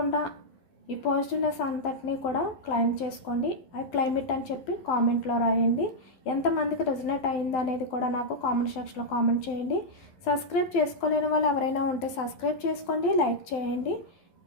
ఈ పాజిటివ్నెస్ అంతటినీ కూడా క్లైమ్ చేసుకోండి. ఐ క్లైమ్ ఇట్ అని చెప్పి కామెంట్లో రాయండి. ఎంతమందికి రెజనేట్ అయింది అనేది కూడా నాకు కామెంట్ సెక్షన్లో కామెంట్ చేయండి. సబ్స్క్రైబ్ చేసుకోలేని వాళ్ళు ఎవరైనా ఉంటే సబ్స్క్రైబ్ చేసుకోండి, లైక్ చేయండి.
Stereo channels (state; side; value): late; right; 12 ms